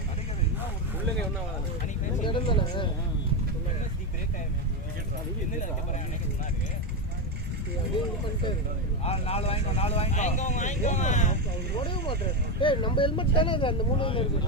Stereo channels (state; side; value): normal; both; correlation 0.11